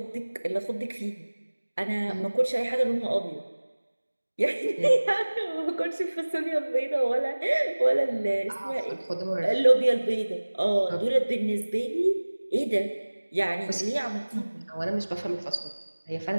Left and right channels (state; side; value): inverted; both; correlation -1.00